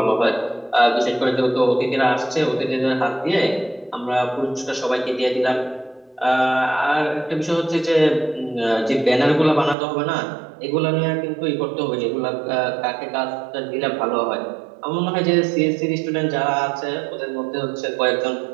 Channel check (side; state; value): left; drops out; at 9.8 s